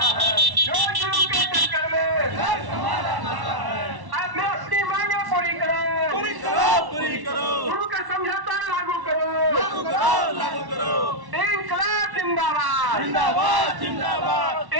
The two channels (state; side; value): late; left; 1.1 ms